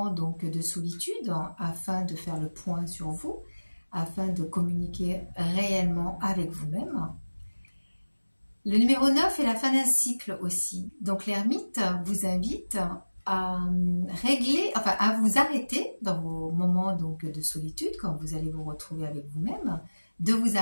donc de solitude afin de faire le point sur vous, afin de communiquer réellement avec vous-même. Le numéro 9 est la fin d'un cycle aussi. Donc l'ermite vous invite à régler, enfin à vous arrêter dans vos moments donc de solitude, quand vous allez vous retrouver avec vous-même, de vous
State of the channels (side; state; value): both; inverted; correlation -1.00